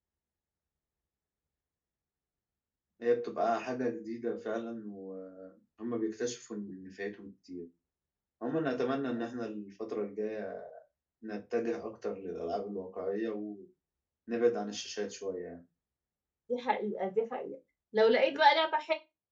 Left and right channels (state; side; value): identical; both; correlation 1.00